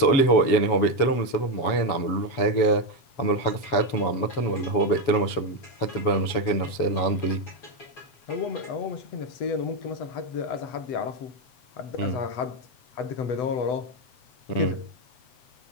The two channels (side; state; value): right; late; 7.1 ms